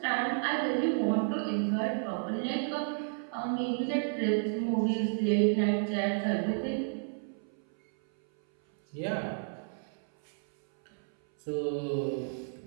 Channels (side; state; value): left; silent; 57 dB below the other